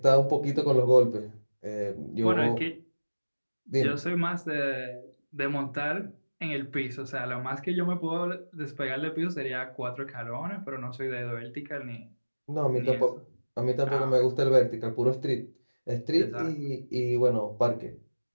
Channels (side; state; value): both; inverted; correlation -1.00